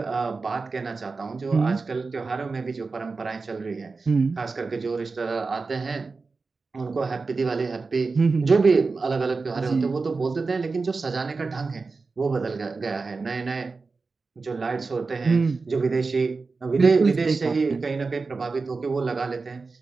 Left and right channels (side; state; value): left; quieter; 4.2 dB